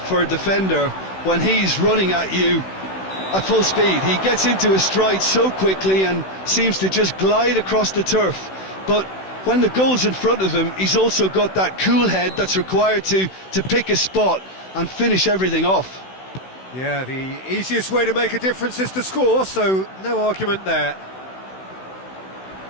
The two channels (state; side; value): late; right; 16 ms